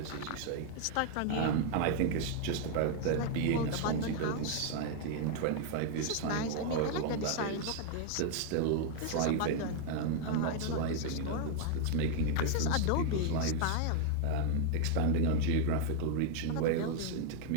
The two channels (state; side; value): different; both; correlation 0.00